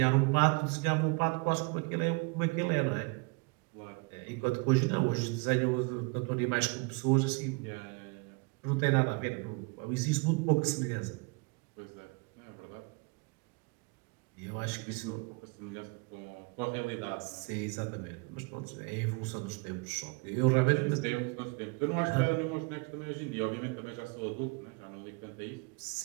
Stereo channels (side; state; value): left; quieter; 30.6 dB